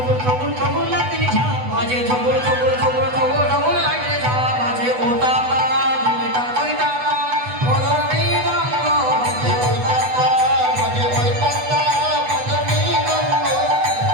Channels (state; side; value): late; left; 8.1 ms